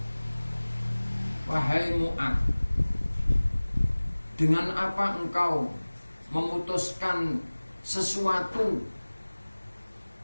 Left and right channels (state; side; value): inverted; both; correlation -1.00